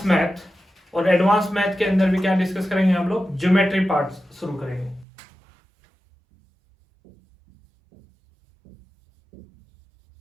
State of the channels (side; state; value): left; drops out; at 5.1 s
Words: मैथ, और एडवांस मैथ के अंदर भी क्या डिस्कस करेंगे, हम लोग ज्योमेट्री पार्ट शुरू करेंगे।